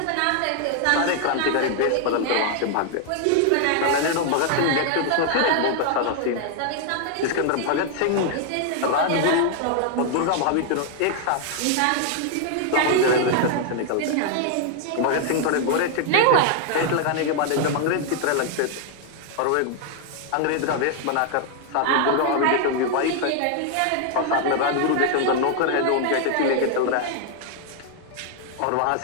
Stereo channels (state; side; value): different; both; correlation 0.00